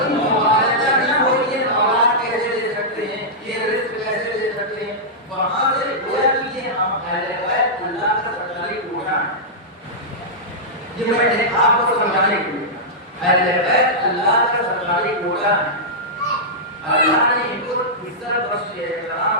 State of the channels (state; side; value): normal; both; correlation -0.11